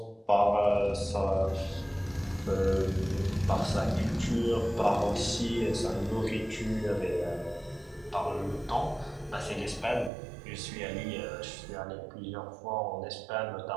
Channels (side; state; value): left; drops out; at 10.1 s